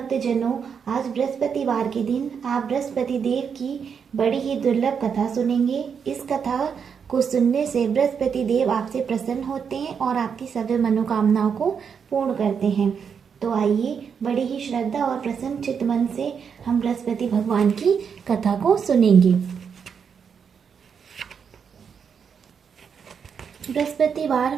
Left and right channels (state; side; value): quieter; left; 6.8 dB